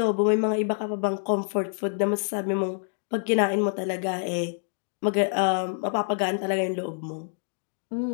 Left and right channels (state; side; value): silent; right; digital silence